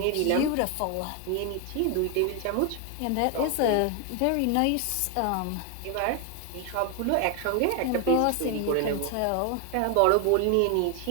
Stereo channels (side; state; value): both; different; correlation 0.01